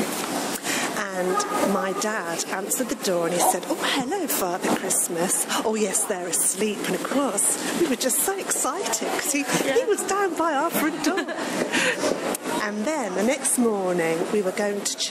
And my dad answered the door and he said, "Oh, hello, Father Christmas." "Oh, yes, they're asleep." And of course, we were just so excited because he was down by our front door. And then the next morning we were going to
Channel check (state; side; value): identical; both; correlation 1.00